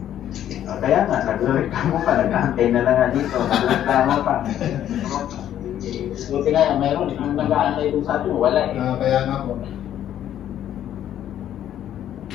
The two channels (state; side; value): quieter; right; 11.1 dB